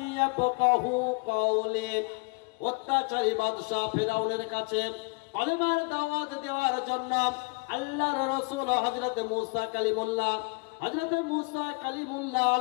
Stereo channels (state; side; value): quieter; right; 30.6 dB